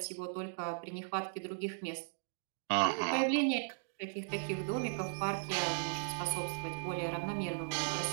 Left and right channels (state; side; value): silent; left; digital silence